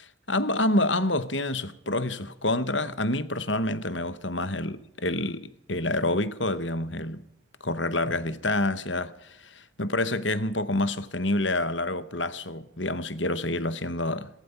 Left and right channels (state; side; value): normal; both; correlation 0.15